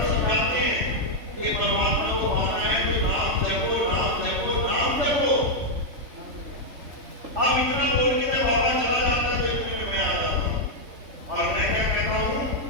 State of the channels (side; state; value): left; late; 3.5 ms